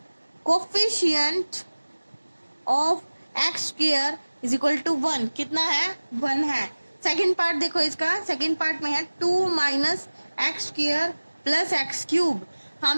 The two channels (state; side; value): inverted; both; correlation -1.00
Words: coefficient of x square is equal to 1। कितना है 1 है। सेकंड पार्ट देखो, इसका सेकंड पार्ट में है 2 minus x square plus x cube.